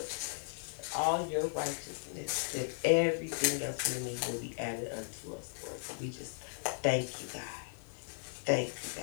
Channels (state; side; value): silent; right; digital silence